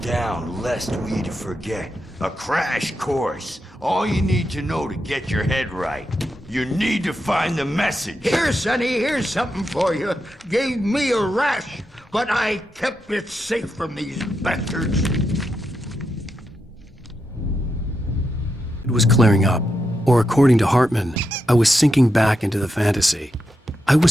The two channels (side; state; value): both; normal; correlation 0.85